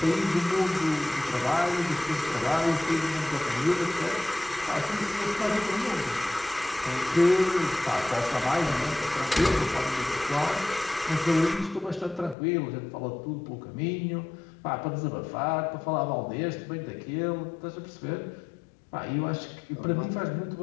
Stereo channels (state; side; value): drops out; right; at 12.4 s